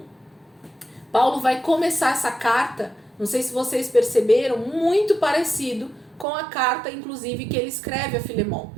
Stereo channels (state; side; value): drops out; left; at 6.2 s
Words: Paulo vai começar essa carta, não sei se vocês perceberam, muito parecido com a carta, inclusive, que ele escreve a Filemon.